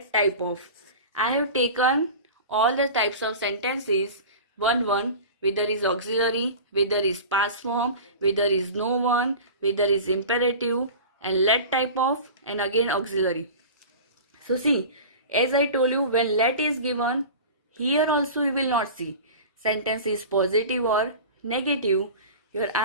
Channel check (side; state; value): both; inverted; correlation -0.35